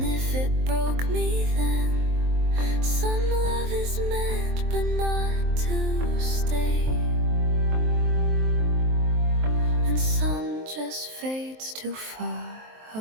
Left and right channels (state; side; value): late; left; 23 ms